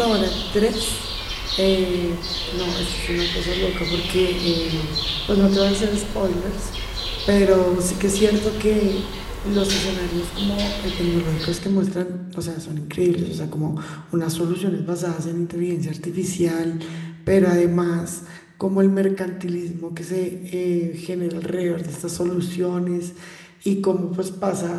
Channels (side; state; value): both; identical; correlation 1.00